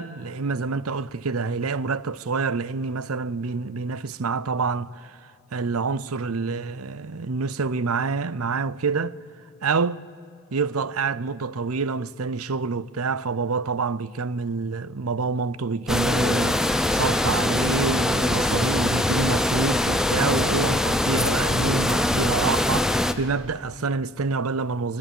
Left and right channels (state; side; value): normal; both; correlation 0.43